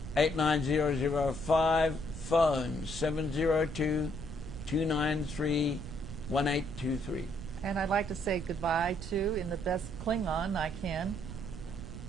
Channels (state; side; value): noise; right; rumble, 10 dB below the sound